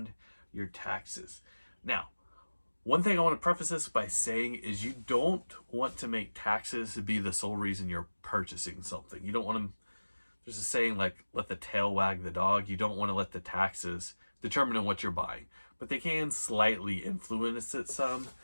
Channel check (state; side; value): inverted; both; correlation -1.00